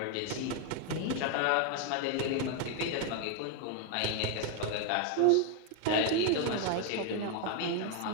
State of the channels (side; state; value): both; different; correlation 0.01